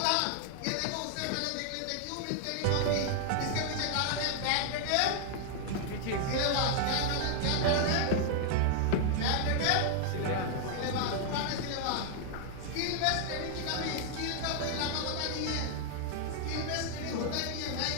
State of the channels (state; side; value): different; both; correlation 0.00